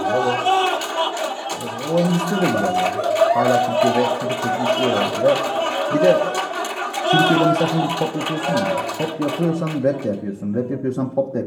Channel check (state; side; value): identical; both; correlation 1.00